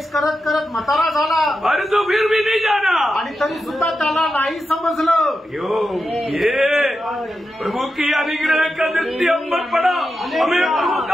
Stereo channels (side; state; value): both; normal; correlation 0.89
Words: करत करत म्हातारा झाला, अरे तो फिर भी नहीं जाना, आणि तरी सुद्धा त्याला नाही समजलं। ये प्रभु की अनुग्रह का दृष्टि हम पर पड़ा, हमें प्रभु